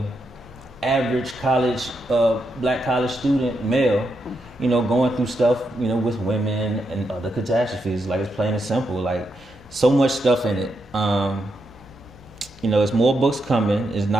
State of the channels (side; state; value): both; normal; correlation 0.82